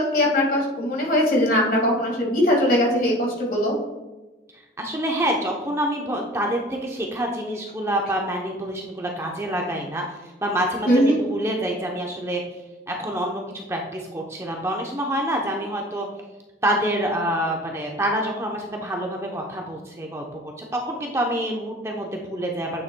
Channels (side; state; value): both; normal; correlation 0.44